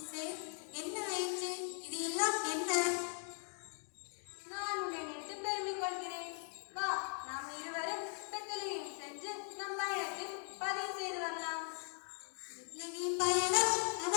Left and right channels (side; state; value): right; silent; 51 dB below the other